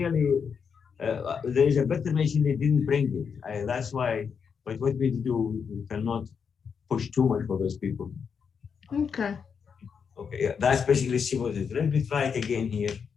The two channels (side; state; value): right; quieter; 6.5 dB